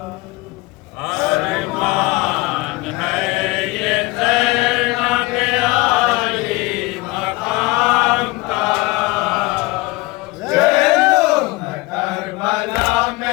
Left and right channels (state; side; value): quieter; right; 22.3 dB